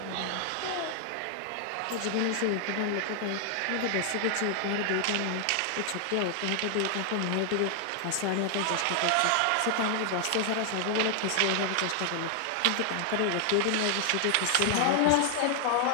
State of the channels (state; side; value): different; both; correlation 0.00